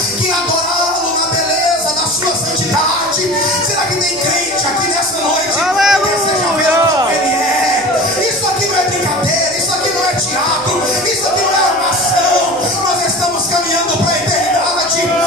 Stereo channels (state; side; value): noise; left; hum, 26 dB below the sound